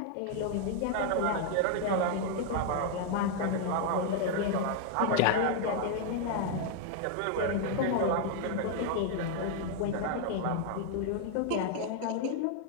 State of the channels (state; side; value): different; both; correlation 0.00